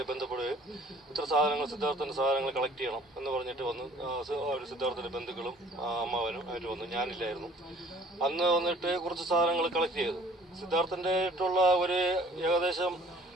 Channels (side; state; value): both; normal; correlation 0.53